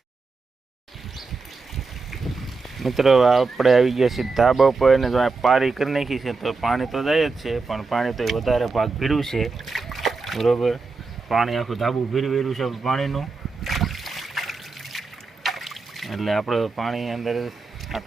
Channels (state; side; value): quieter; left; 4.1 dB